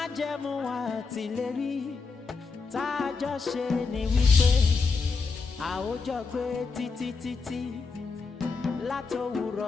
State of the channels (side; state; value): right; quieter; 4.6 dB